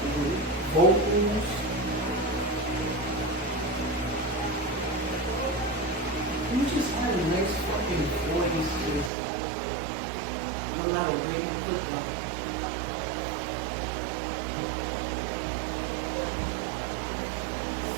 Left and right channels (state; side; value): drops out; left; at 9.1 s